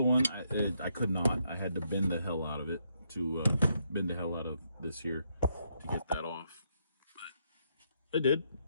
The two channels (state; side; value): inverted; both; correlation -0.76